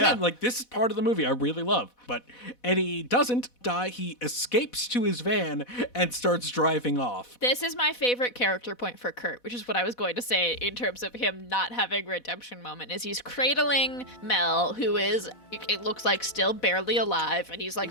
This is part of the movie I really love. But Eddie doesn't die. He escapes to his van and starts driving off. This is my favorite character point for Kurt, which is what I was going to say in terms of him not having a redemption moment, is he's cradling Mel, who is, it looks like, still barely alive, and he's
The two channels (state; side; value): late; right; 4.1 ms